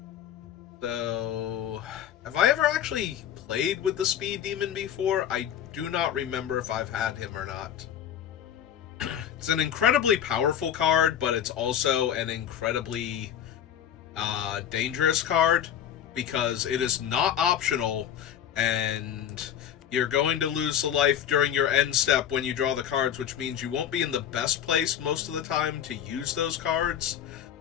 So, have I ever actually played with the Speed Demon before? I do not remember if I've had him or not. It's an incredibly powerful card, but it's also an incredibly dangerous card because it is not optional, and you're going to lose the life during your end step when you draw the cards, which means you won't be in the best place most of the time to use those cards.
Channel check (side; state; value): right; quieter; 9.7 dB